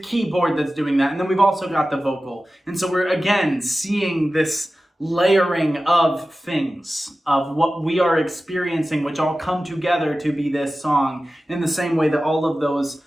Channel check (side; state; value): both; normal; correlation 0.95